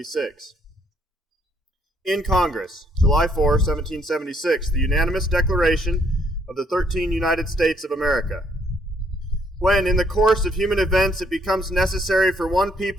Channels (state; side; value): normal; both; correlation 0.68